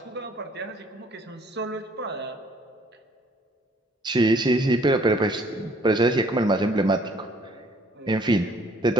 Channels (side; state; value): both; normal; correlation 0.60